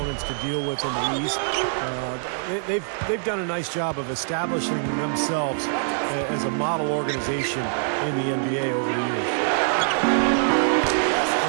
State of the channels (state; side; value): silent; left; digital silence